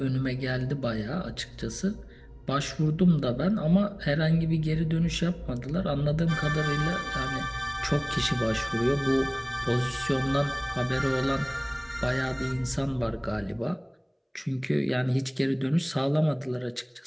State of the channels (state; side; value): identical; both; correlation 1.00